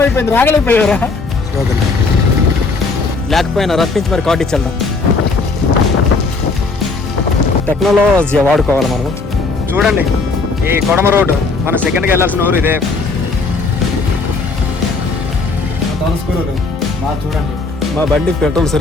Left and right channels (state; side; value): quieter; right; 3.9 dB